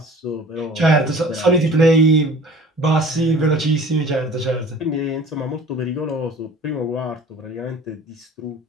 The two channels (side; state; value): both; normal; correlation 0.46